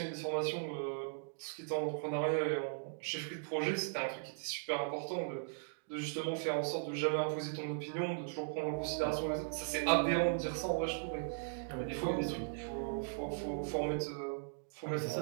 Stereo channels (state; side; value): silent; left; digital silence